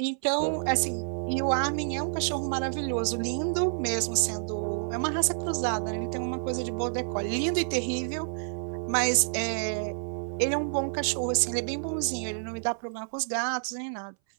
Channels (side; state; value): left; silent; 59 dB below the other